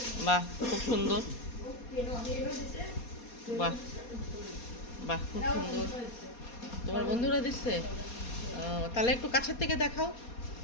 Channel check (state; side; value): late; right; 4.2 ms